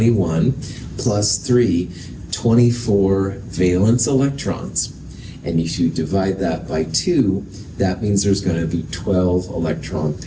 plus 3, 24 valence electrons. And if you divide that by 2, that means there's going to be 12 electron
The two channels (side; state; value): both; identical; correlation 1.00